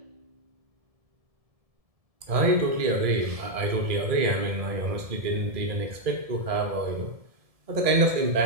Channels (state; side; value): late; left; 1.7 ms